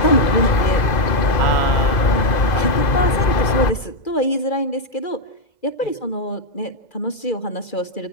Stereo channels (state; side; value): late; right; 2.0 ms